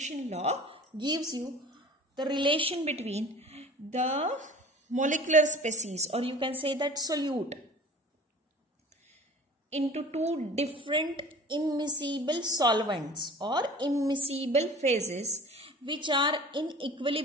law gives you the relation between the molecular species, or you can say that solute, into two different immiscible solvents or immiscible phases which are in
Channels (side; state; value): both; normal; correlation 0.43